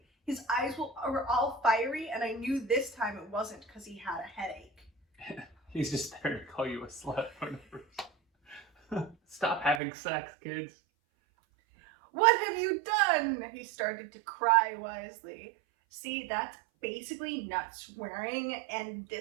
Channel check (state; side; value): drops out; left; at 9.8 s